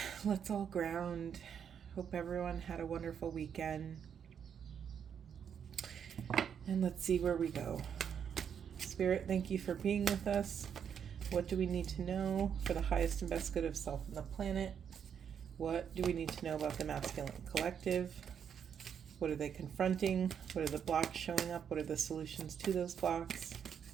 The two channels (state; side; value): quieter; left; 7.9 dB